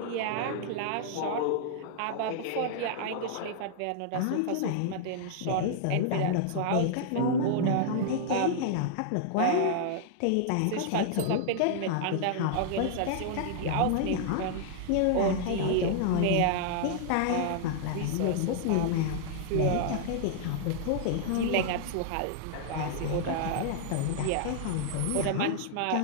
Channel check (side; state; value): both; different; correlation -0.01